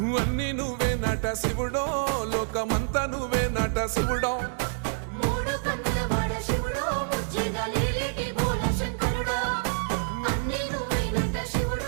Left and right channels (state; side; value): silent; left; digital silence